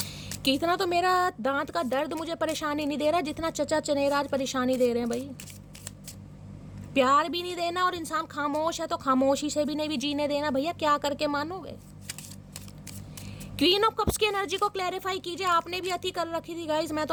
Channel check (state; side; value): identical; both; correlation 1.00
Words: कि इतना तो मेरा दांत का दर्द मुझे परेशानी नहीं दे रहा जितना चचा चनेराज परेशानी दे रहे हैं भाई। प्यार भी नहीं देना, और इंसान खामोश है तो खामोशी से भी नहीं भी जीने देना, भैया क्या करके मानोगे। क्वीन ऑफ कप्स की एनर्जी को क्लैरिफाई कीजिए, आपने भी अति कर रखी थी गाइज, मैं